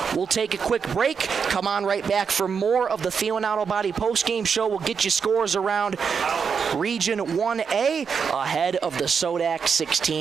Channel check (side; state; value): left; quieter; 6.2 dB